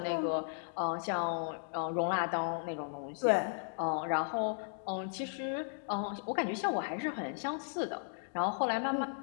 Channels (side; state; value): right; silent; digital silence